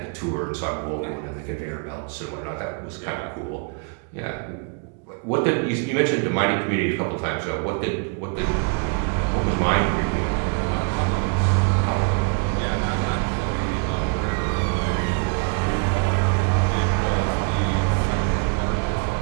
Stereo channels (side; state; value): left; quieter; 36.1 dB